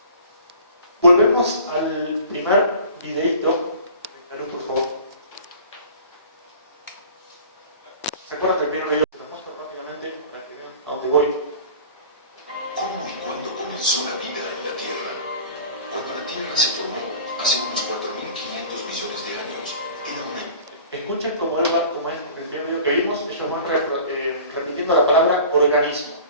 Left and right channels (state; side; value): inverted; both; correlation -0.43